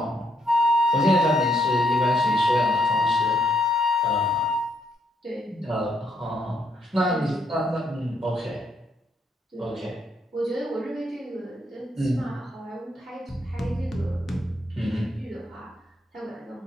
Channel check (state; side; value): normal; both; correlation 0.75